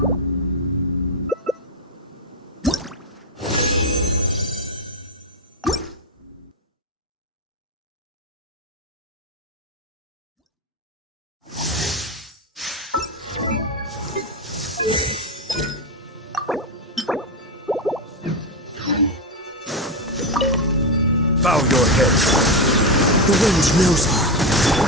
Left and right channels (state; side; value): normal; both; correlation 0.13